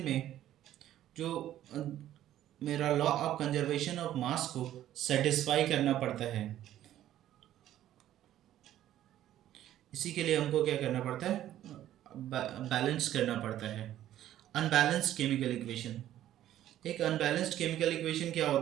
में जो मेरा law of conservation of mass को सेटिस्फाई करना पड़ता है, इसी के लिए हमको क्या करना पड़ता है, बैलेंस करना पड़ता है। अनबैलेंस्ड केमिकल इक्वेशन, एक अनबैलेंस्ड केमिकल इक्वेशन क्या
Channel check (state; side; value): quieter; left; 12.5 dB